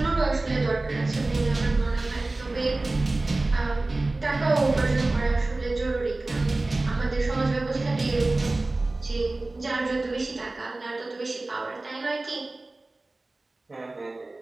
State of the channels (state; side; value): quieter; left; 3.0 dB